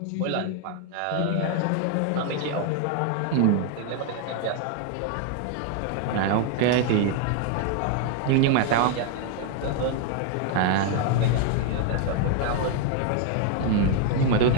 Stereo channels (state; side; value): different; both; correlation 0.00